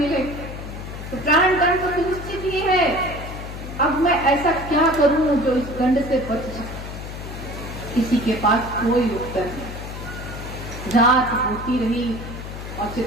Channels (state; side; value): noise; left; hum, 9 dB below the sound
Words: तो प्राण दंड तो निश्चित ही है। अब मैं ऐसा क्या करूं जो इस दंड से बच जाए? किसी के पास कोई उत्तर नहीं। रात होती रही और